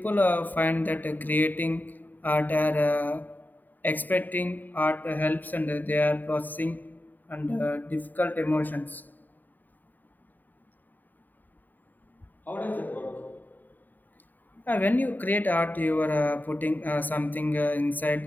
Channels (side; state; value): right; late; 0.087 ms